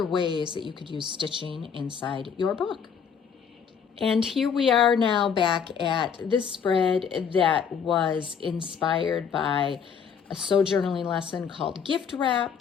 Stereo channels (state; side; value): quieter; right; 7.0 dB